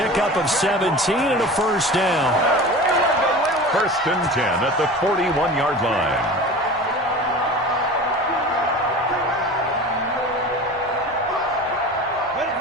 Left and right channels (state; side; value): normal; both; correlation 0.35